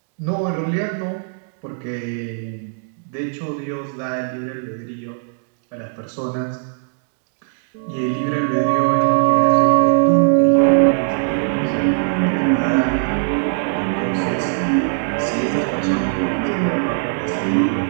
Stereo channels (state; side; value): silent; left; digital silence